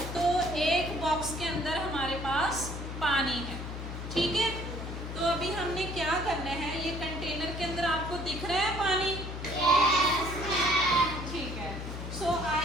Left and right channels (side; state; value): left; noise; hum, 7 dB below the sound